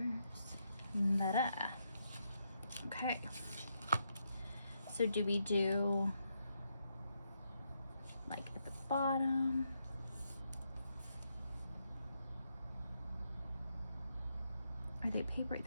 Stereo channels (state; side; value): inverted; both; correlation -0.80